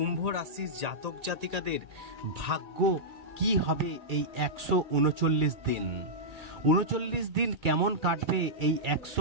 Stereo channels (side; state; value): left; late; 2.3 ms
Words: রাশির জাতক জাতিকাদের ভাগ্য কি হবে এই 139 দিন। 39 দিন কেমন কাটবে এই